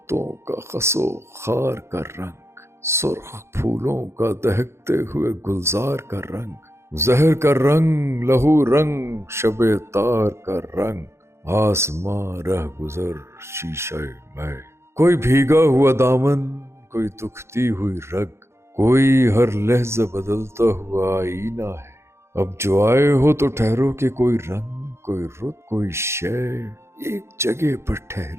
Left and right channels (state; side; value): late; left; 0.13 ms